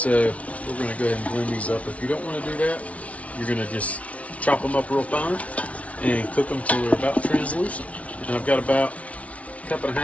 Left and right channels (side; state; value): right; late; 0.065 ms